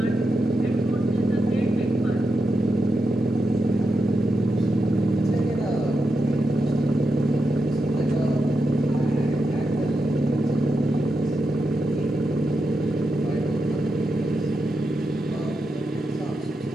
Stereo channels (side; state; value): both; normal; correlation 0.86